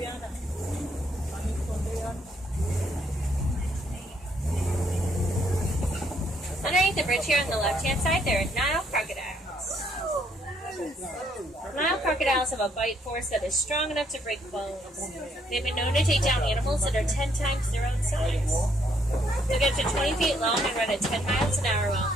Underneath the bridge here on the left-hand side, there are Nile crocodiles. Nile crocodiles have a bite force that is strong enough to break bones. They've been known to take down animals that are 10 times their own size. They'll get to 20 feet long and run at 10 miles an hour while on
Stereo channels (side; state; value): both; normal; correlation 0.70